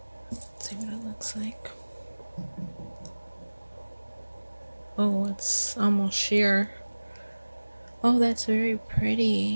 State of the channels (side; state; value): both; inverted; correlation -1.00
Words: Let's see what it looks like. Oh, it's almost sheer. Oh, that's very